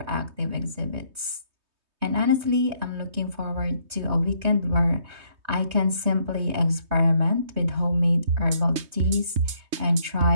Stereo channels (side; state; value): left; late; 3.2 ms